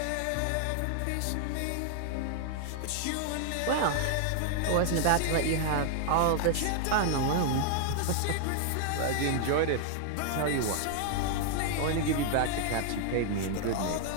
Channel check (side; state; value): both; different; correlation 0.00